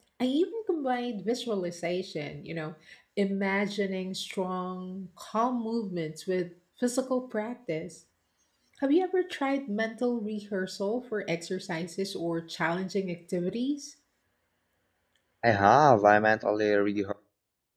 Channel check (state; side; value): identical; both; correlation 1.00